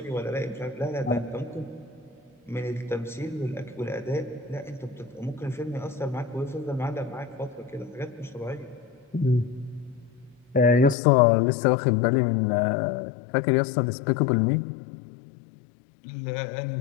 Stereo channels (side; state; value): right; drops out; at 11.0 s